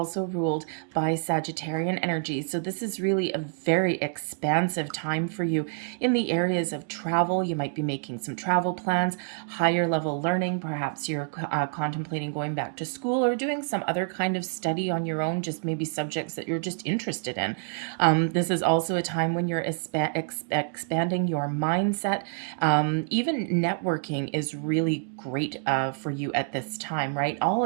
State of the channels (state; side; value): silent; left; digital silence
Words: ruled by Sagittarian energy. So this is really a very expansive time for you in the areas of travel. You might be making some travel plans, higher level learning. Perhaps you're contemplating going back to school or doing some other kind of study on your own, just maybe subjects that you're just interested in. This is also a time when you're expanding your mindset. Even networking is really great for you at this time, right? All